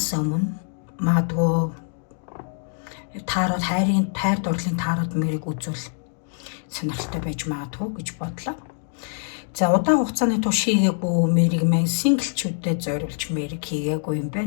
өмнө магадгүй таарууд хайр дурлалын таарууд мэрийг үзүүл сонирхолтой байж магадгүй гэж бодлоо. За удаан хугацааны турш хийгээгүй мэрийг маань синглчүүдэд зориулж мэрийг хийгээгүй юм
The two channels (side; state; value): right; silent; 62 dB below the other